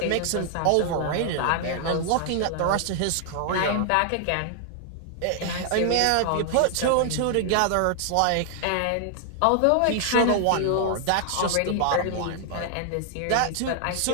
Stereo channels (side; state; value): both; different; correlation 0.00